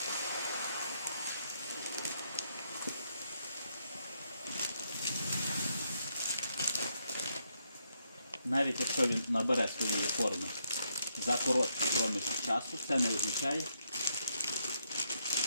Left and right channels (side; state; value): both; inverted; correlation -0.77